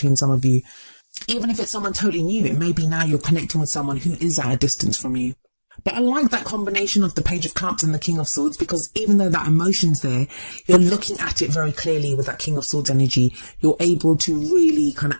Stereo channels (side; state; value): both; inverted; correlation -1.00